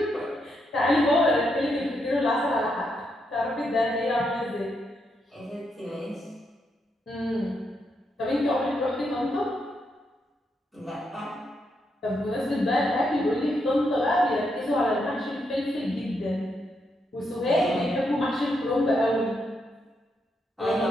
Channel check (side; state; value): both; normal; correlation 0.80